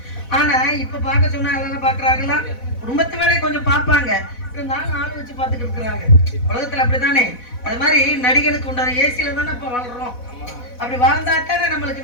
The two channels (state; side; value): late; right; 4.1 ms